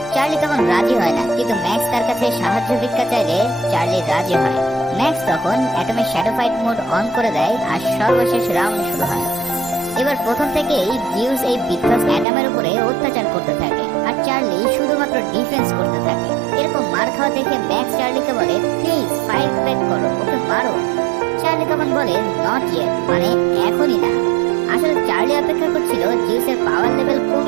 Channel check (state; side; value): drops out; left; at 12.2 s